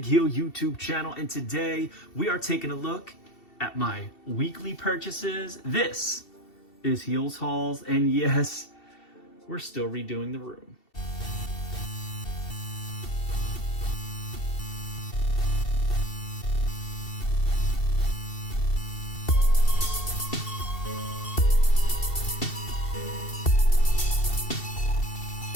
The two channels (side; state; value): right; late; 2.7 ms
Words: Heel YouTube channel, and today we are taking a look at my weekly purchases. This is Heels Hauls, and yes, we're still redoing the room.